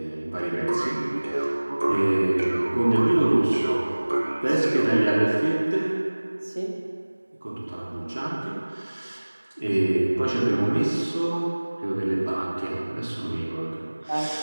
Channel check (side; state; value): both; inverted; correlation -1.00